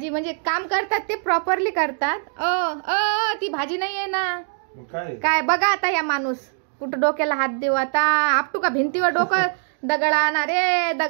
म्हणजे काम करतात ते प्रॉपरली करतात. ती भाजी नाही आहे ना. काय बघा आता या माणूस कुठं डोक्याला हात देऊ आता. आपटू का भिंतीवर डोकं. दगड आणा रे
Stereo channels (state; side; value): silent; left; 62 dB below the other